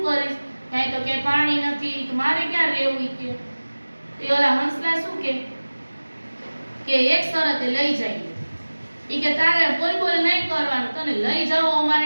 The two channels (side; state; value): both; inverted; correlation -1.00